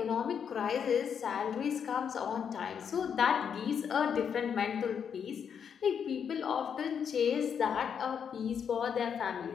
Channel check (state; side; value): quieter; right; 7.5 dB